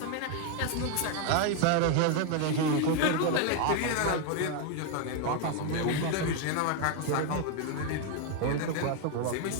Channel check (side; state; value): both; different; correlation 0.01